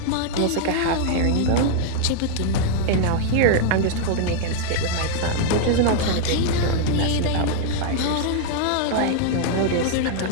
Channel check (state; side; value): different; both; correlation 0.00